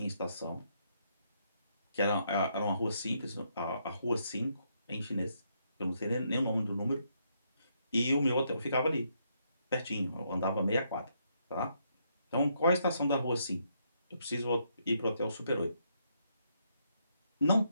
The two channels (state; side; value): inverted; both; correlation -0.75